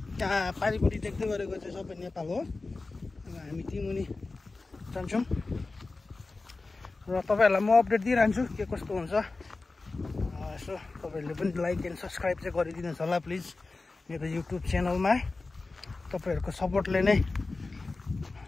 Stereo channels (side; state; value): right; quieter; 3.6 dB